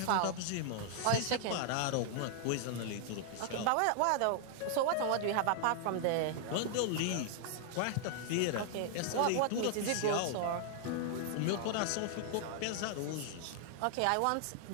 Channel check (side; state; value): both; different; correlation 0.00